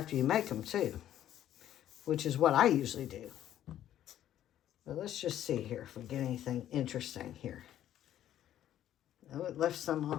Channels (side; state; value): right; quieter; 11.7 dB